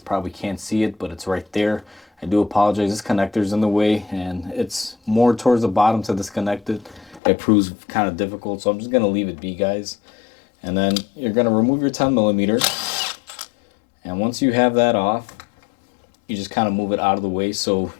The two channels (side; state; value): right; drops out; at 7.2 s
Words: probably can't see it, but it's right there. I do apologize, this connector's in the way, and it's more towards the bottom to disconnect it. It proves kind of difficult, so I'm just going to leave it be, guys. And then you're going to remove your 10mm, and once you have that off, you just kind of move it out of the way so